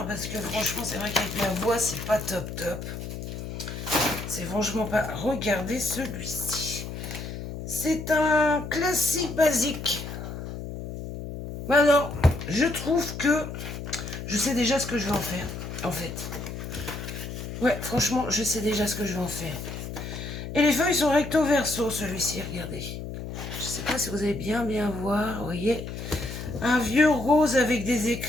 parce que franchement, c'est vrai qu'avec ma voix, c'est pas top. C'est franchement pas... Regardez celui-ci. C'est un classique basique. Alors, je trouve que je sais déjà ce que je vais en faire, en fait. Ouais, franchement, je sais déjà ce que je vais en faire. Et les feuilles sont recto verso, celui-ci, regardez. Je sais pas si vous allez bien voir, vous voyez. Un vieux rose avec des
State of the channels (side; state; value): left; noise; hum, 8 dB below the sound